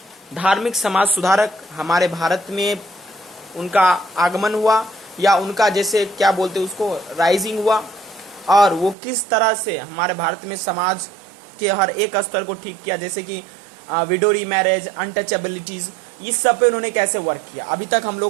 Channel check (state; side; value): drops out; left; at 9.0 s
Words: धार्मिक समाज सुधारक हमारे भारत में उनका आगमन हुआ या उनका जैसे क्या बोलते हैं उसको राइजिंग हुआ, और वो किस तरह से हमारे भारत में समाज के हर एक स्तर को ठीक किया, जैसे कि विडो रीमैरेज, अनटचेबिलिटीज, इस सब पे उन्होंने कैसे वर्क किया। अभी तक हम